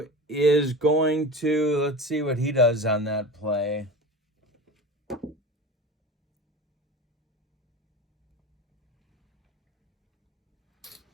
is going to, let's see what he does on that play.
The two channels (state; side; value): normal; both; correlation 0.31